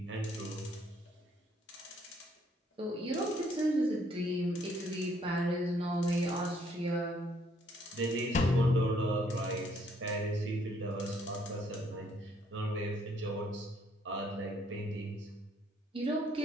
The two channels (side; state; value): both; normal; correlation 0.67